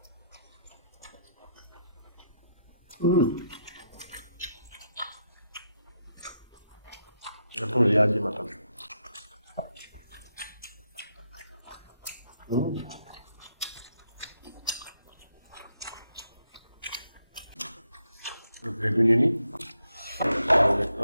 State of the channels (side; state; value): both; inverted; correlation -0.79